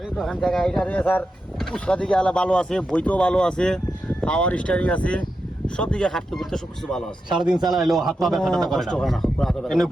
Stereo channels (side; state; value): both; normal; correlation 0.88